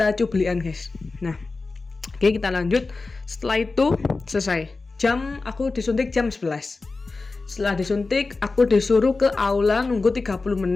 cublian guys. Nah, oke, kita lanjut. Setelah itu selesai. Aku disuntik jam 11. Setelah disuntik, aku disuruh ke aula nunggu 30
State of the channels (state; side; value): quieter; right; 3.8 dB